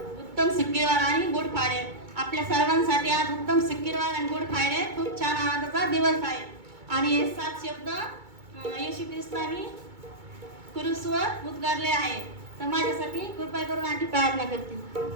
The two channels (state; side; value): late; left; 2.2 ms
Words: उत्तम सिक्कीवार आणि गुड फ्रायडे. आपल्या सर्वांसाठी आज उत्तम सिक्कीवार आणि गुड फ्रायडे खूप छान आनंदाचा दिवस आहे. आणि हे 7 शब्द येशू ख्रिस्तानी क्रूसवर उद्गारले आहे. तर माझ्यासाठी कृपा करून आणखी प्रार्थना करते.